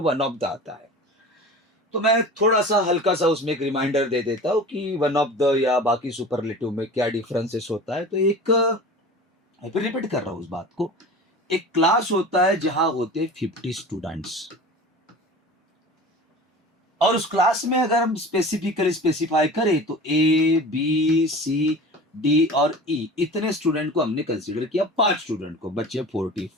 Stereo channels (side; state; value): both; normal; correlation 0.37